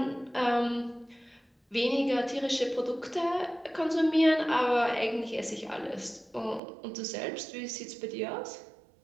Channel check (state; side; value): drops out; left; at 6.6 s